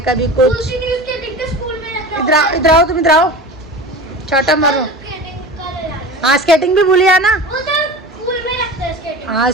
कभी कुछ। इधर आओ, इधर आओ, तुम इधर आओ, चाटा मारो। हाँ स्केटिंग भी भूलिया ना। हाँ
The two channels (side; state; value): both; normal; correlation 0.33